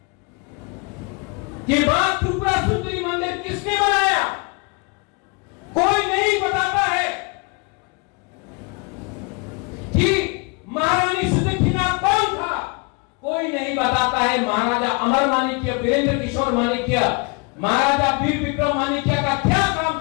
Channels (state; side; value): quieter; right; 31.0 dB